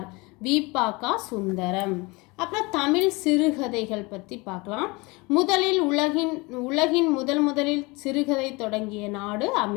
வி.ப.க. சுந்தரம். அப்புறம் தமிழ் சிறுகதைகள் பற்றி பார்க்கலாம். உலகின் முதலில் சிறுகதை தொடங்கிய நாடு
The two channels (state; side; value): quieter; right; 25.7 dB